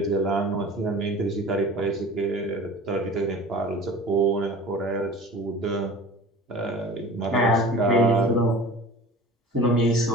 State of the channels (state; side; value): normal; both; correlation 0.40